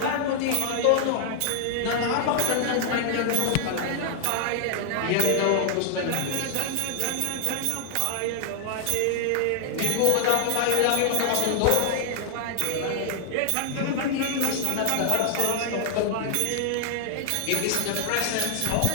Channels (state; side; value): different; both; correlation 0.00